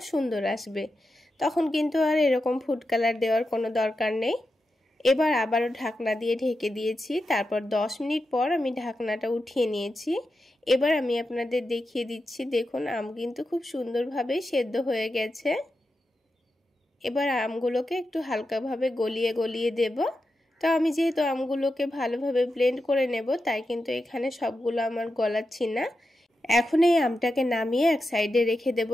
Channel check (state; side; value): normal; both; correlation 0.89